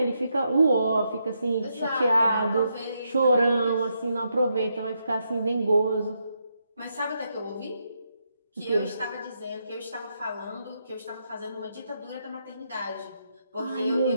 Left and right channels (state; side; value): inverted; both; correlation -0.80